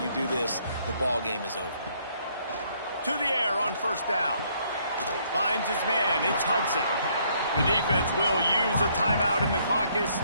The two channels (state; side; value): inverted; both; correlation -0.67